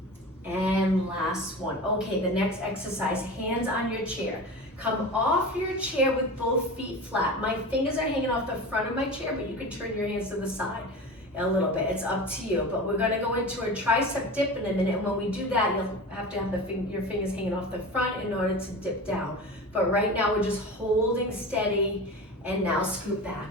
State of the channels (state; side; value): normal; both; correlation 0.31